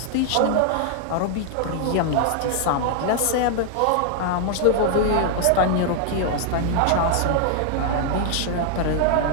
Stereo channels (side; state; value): both; different; correlation 0.00